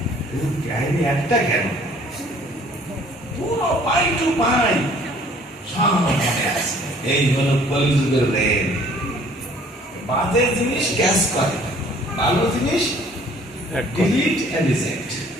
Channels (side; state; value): both; normal; correlation 0.56